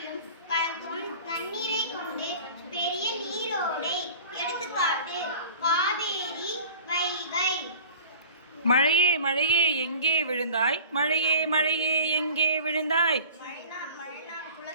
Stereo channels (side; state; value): both; inverted; correlation -0.42